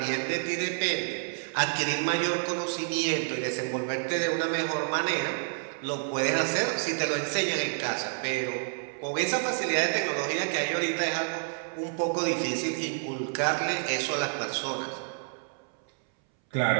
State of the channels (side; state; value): left; silent; 59 dB below the other